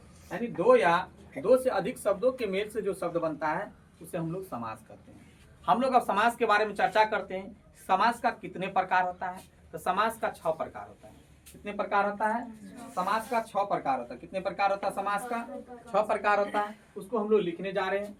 यानी दो या दो से अधिक शब्दों के मेल से जो शब्द बनता है उसे हम लोग समास कहते हैं। हम लोग अब समास के बारे में चर्चा करते हैं। समास का कितने प्रकार होता है? तो समास का 6 प्रकार होता है। कितने प्रकार होता है? समास का 6 प्रकार होता है। कितने प्रकार होता है? समास का 6 प्रकार होता है। उसको हम लोग लिखने जा रहे हैं।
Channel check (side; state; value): both; identical; correlation 1.00